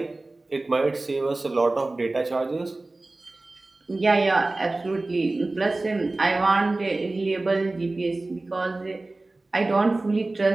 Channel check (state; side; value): quieter; left; 3.0 dB